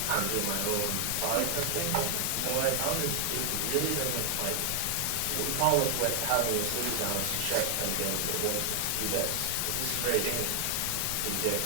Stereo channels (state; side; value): different; both; correlation 0.00